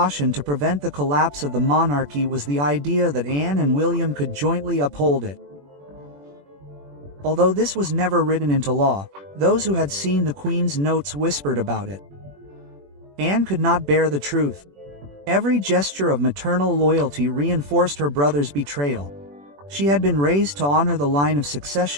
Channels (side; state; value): left; late; 21 ms